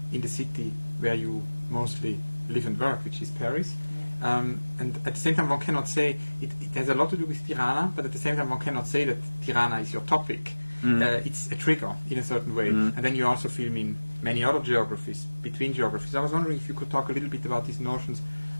in the city where you mostly live and work, which is Paris. And at the same time, one cannot say it has a lot to do with Tirana, but at the same time, one cannot say that Tirana is your topic. It's a trigger in a certain way. And then you also film in many other geographies, between geographies. I was wondering if you could talk a little bit about these notions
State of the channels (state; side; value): inverted; both; correlation -1.00